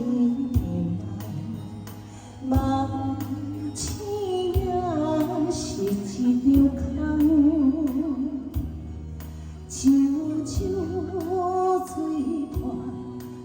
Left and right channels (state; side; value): identical; both; correlation 1.00